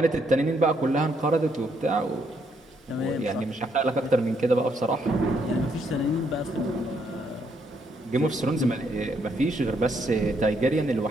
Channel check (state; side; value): normal; both; correlation 0.74